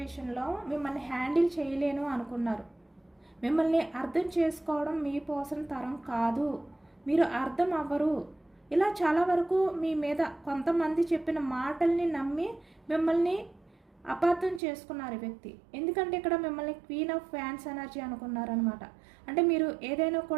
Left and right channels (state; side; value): drops out; left; at 14.6 s